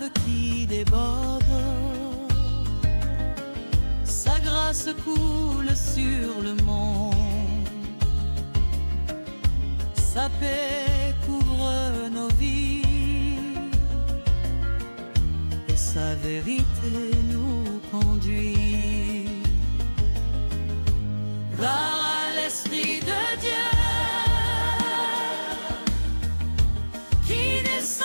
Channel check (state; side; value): inverted; both; correlation -1.00